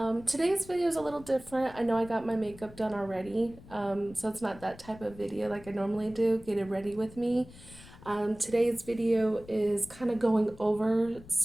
Today's video is a little different. I know I got my makeup done already, so it's not that type of video like I normally do, get it ready with me. Today's video is kind of going over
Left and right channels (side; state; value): left; noise; rumble, 20 dB below the sound